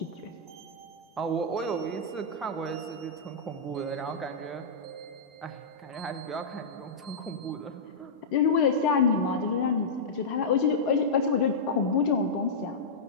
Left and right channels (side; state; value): right; quieter; 3.5 dB